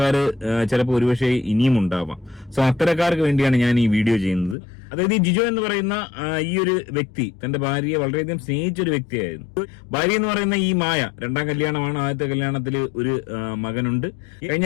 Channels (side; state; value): right; drops out; at 4.5 s